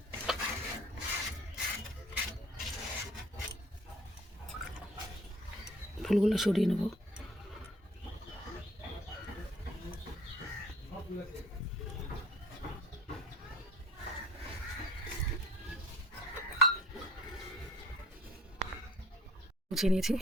ফুলগুলো সরিয়ে নেবো। গুছিয়ে নিয়েছি,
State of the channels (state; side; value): normal; both; correlation 0.53